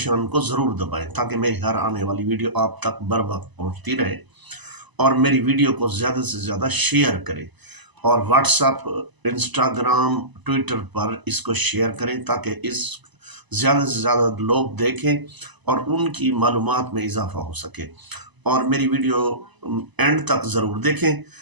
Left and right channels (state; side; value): late; left; 1.0 ms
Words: کو ضرور دبائیں تاکہ میری ہر آنے والی ویڈیو آپ تک بر وقت پہنچتی رہے، اور میری ویڈیو کو زیادہ سے زیادہ شیئر کریں اور واٹس ایپ، انسٹاگرام، ٹویٹر پر اس کو شیئر کریں تاکہ اس زیادہ سے زیادہ لوگ دیکھیں اور ان کی معلومات میں اضافہ ہو سکے۔ اور میری ویڈیو اینڈ تک ضرور دیکھیں